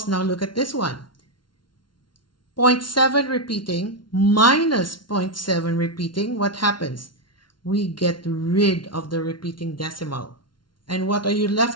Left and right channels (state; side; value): late; right; 0.72 ms